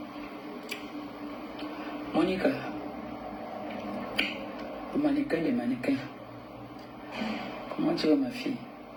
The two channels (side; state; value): both; identical; correlation 1.00